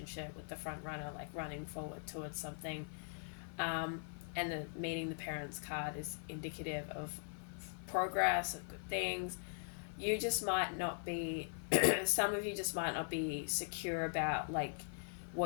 with the front runner like running forward towards something, and the meeting the parents card is indicative of progress, of good things. You just might not be some of you just might not be secure about like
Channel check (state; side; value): silent; right; 50 dB below the other